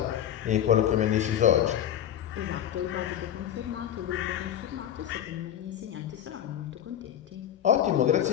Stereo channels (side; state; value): right; quieter; 10.4 dB